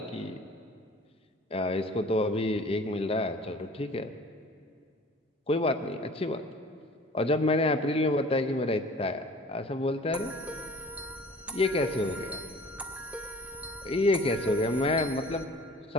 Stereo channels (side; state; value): both; normal; correlation 0.46